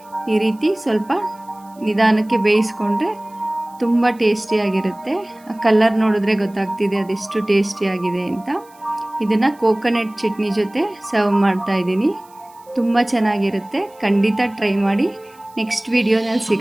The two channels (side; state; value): right; noise; hiss, 29 dB below the sound